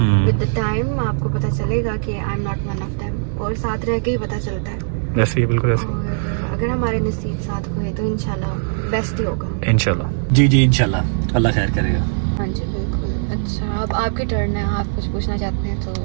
विद द टाइम आपको पता चलेगा कि I am not one of them, और साथ रह के ही पता चलता है। ऐसे ही, बिल्कुल ऐसे। और अगर हमारे नसीब साथ हुए तो इंशाल्लाह बेस्ट ही होगा। इंशाल्लाह जी जी, इंशाल्लाह अल्लाह खैर करेगा। हाँ जी बिल्कुल। अच्छा, अब आपकी टर्न है, आप कुछ पूछना चाहते हैं तो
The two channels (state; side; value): silent; left; digital silence